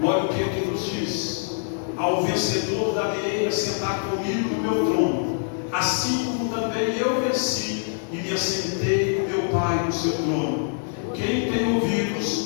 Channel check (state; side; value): silent; right; digital silence